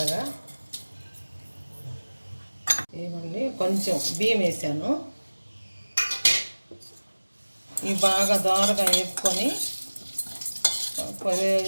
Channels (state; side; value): inverted; both; correlation -1.00